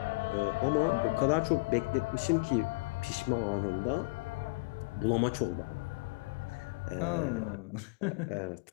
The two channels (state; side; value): quieter; right; 28.4 dB